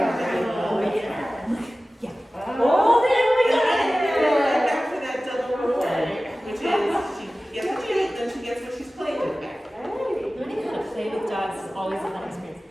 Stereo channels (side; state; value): both; normal; correlation 0.96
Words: Oh, yeah. Oh, there we go. Back to that double reward, which is she gets a treat, then she gets what she's playing with back. Learning how to play with dogs is always a fun experience.